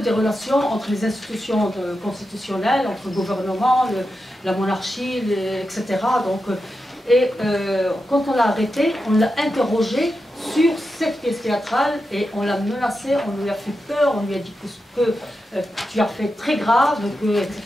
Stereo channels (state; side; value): normal; both; correlation 0.89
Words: relations entre les institutions constitutionnelles, entre le gouvernement, la monarchie, etc. Donc, quand on l'a arrêté, on l'a interrogé sur cette pièce théâtrale et on l'a menacé, on lui a fait peur, on lui a dit que tu as fait très grave,